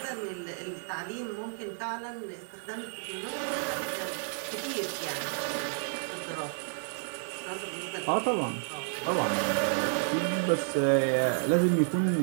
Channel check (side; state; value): left; silent; 57 dB below the other